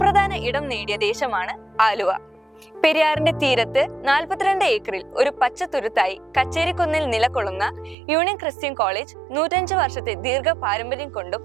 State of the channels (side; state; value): left; drops out; at 8.0 s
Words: ഇടം നേടിയ ദേശമാണ് ആലുവ. പെരിയാറിന്റെ തീരത്ത് 42 ഏക്കറിൽ ഒരു പച്ചത്തുരുത്തായി കച്ചേരിക്കുന്നിൽ നിലകൊള്ളുന്ന യൂണിയൻ ക്രിസ്ത്യൻ കോളേജ് 105 വർഷത്തെ ദീർഘ പാരമ്പര്യം കൊണ്ടും